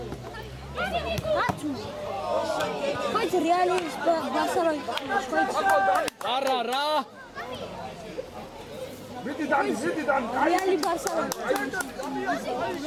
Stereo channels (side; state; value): both; identical; correlation 1.00